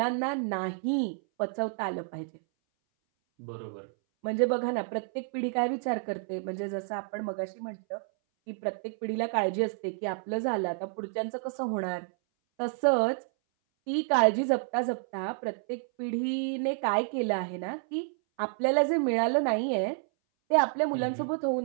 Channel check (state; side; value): silent; left; 58 dB below the other